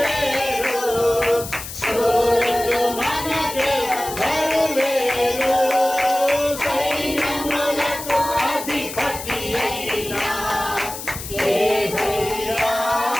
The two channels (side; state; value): left; noise; hiss, 10 dB below the sound